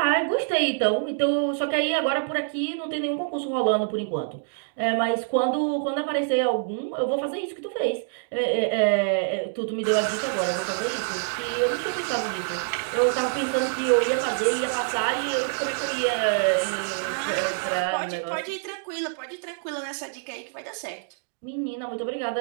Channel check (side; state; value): left; silent; digital silence